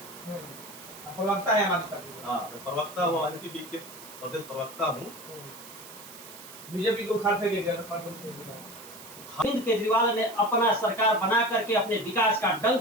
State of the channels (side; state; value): right; noise; hiss, 16 dB below the sound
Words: प्रवक्ता है हमारे पार्टी। हाँ, मैं प्रवक्ता हूँ, एनपीपी के प्रदेश प्रवक्ता हूँ। बीजेपी को उखाड़ फेंकेगा। अरविंद केजरीवाल ने अपना सरकार बना करके अपने विकास का